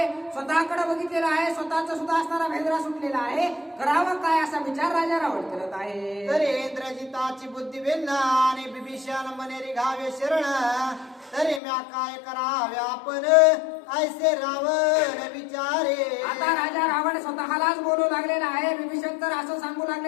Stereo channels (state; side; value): drops out; right; at 11.6 s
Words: स्वतःकडे बघितलेलं आहे स्वतःचा सुद्धा असणारा भेदरा सुटलेला आहे करावं काय असा विचार राजा रावण करत आहे. तरी इंद्रजिताची बुद्धी भिन्न आणि विभीषण मने रिघावे शरण तरी म्या काय करावे आपण ऐसे रावण विचारे. आता राजा रावण स्वतःलाच बोलू लागलेला आहे विभीषण तर असं सांगू